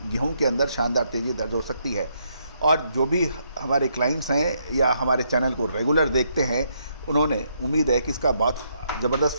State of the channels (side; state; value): both; inverted; correlation -0.74